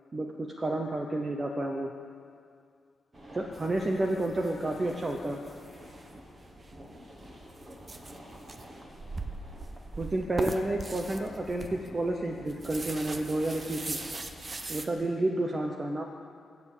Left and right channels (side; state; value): both; normal; correlation 0.92